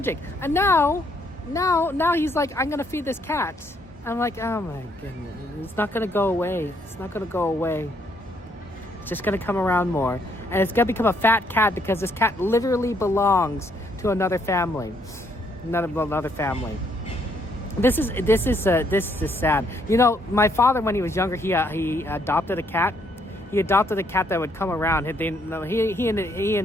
And now he's like, I'm gonna feed this cat. I'm like, oh my goodness, it's not gonna go away. It's just gonna come around more, and it's gonna become a fat cat because this cat literally belongs to another family. This is sad. You know, my father, when he was younger, he adopted a cat. He adopted a cat that would come around. He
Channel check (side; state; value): both; normal; correlation 0.70